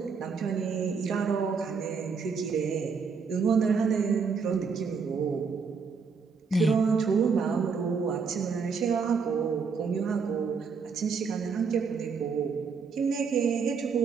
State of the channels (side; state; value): left; quieter; 5.5 dB